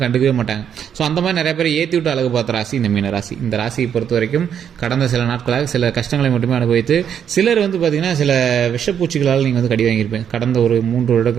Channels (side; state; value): left; quieter; 8.6 dB